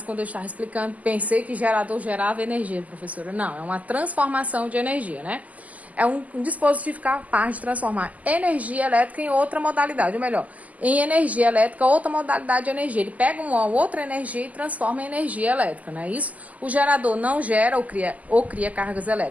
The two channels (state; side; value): late; left; 0.075 ms